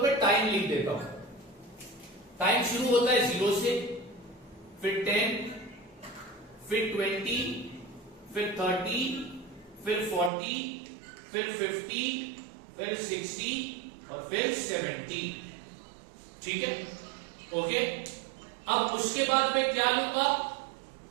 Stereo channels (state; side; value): drops out; left; at 10.3 s